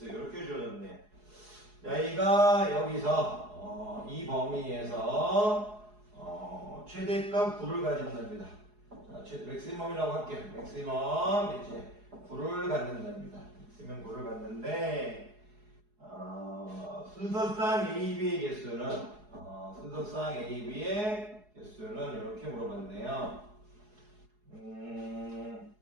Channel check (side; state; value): left; late; 4.8 ms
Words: 이렇게 주어졌네요. 여기가 여기서 이 범위에서 최대값 9를 가진답니다. 자, 맥시멈이라고 할게요. 맥시멈 이제 9를 갖는답니다. 맥시멈 9를 갖는데 순서상 AB의 개수는 순서상 AB의 개수는 이렇게 물어봤네요.